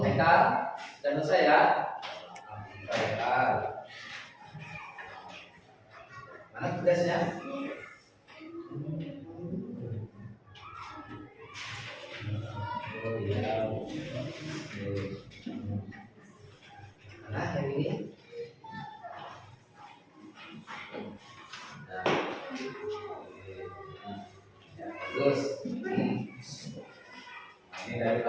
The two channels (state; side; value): identical; both; correlation 1.00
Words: Haikal? Sudah selesai ya? Haikal. Mana tugasnya? Oh iya. Mana yang ini? Nah. Ya, bagus. Ini dari